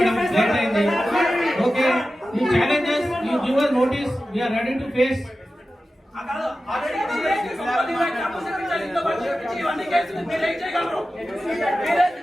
లేట్ అయింది. ఓకే, ఈ challenges you give us notice, we are ready to face.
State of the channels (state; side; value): normal; both; correlation 0.94